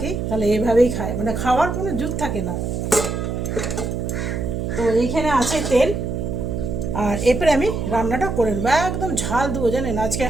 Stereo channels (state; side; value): noise; right; hum, 3 dB below the sound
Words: তাহলে এভাবেই খাই, মানে খাওয়ার কোনো জুত থাকে না। তো এইখানে আছে তেল, আর এরপরে আমি রান্নাটা করে নেবো। একদম ঝাল দেবো জানেন, আজকে